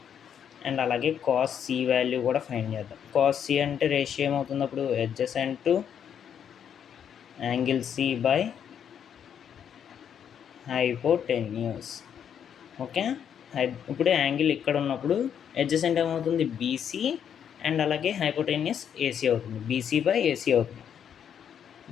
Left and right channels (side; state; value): right; quieter; 8.5 dB